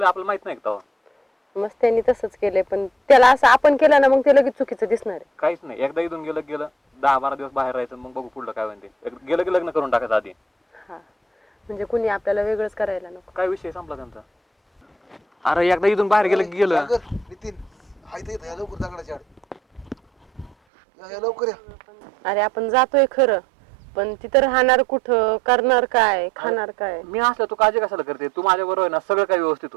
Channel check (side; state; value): left; drops out; at 20.5 s